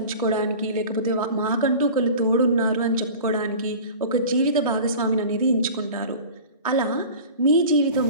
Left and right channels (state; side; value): inverted; both; correlation -0.38